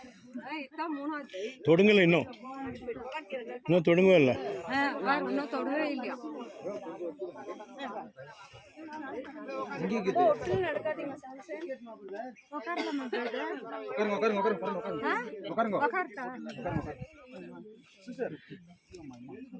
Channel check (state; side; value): identical; both; correlation 1.00